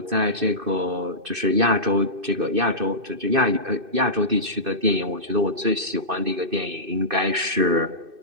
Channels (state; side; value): late; left; 2.6 ms